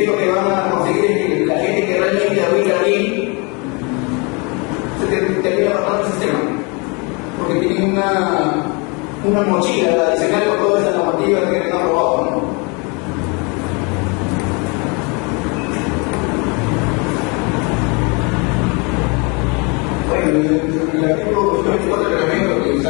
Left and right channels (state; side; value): quieter; right; 30.8 dB